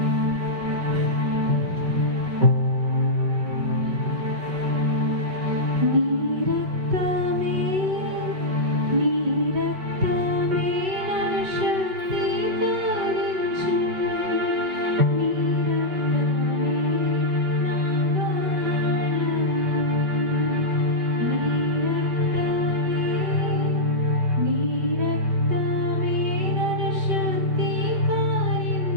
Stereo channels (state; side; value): late; left; 5.3 ms